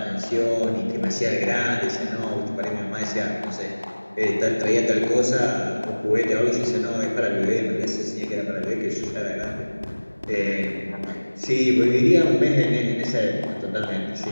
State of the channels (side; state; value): both; inverted; correlation -1.00